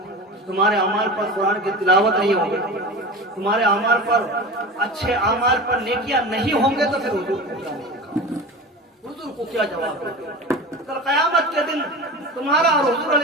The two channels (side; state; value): both; normal; correlation 0.31